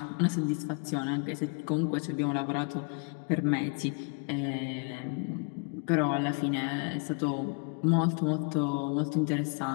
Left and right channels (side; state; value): right; quieter; 35.5 dB